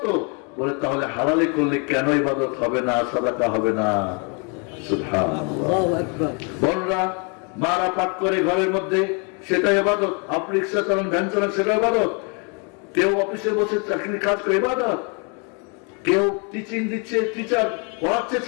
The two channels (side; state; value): right; quieter; 35.4 dB